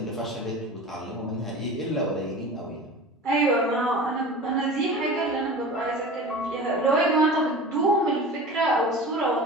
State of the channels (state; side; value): normal; both; correlation 0.36